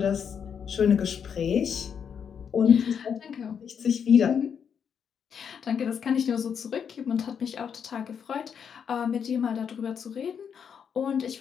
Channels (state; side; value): quieter; right; 7.4 dB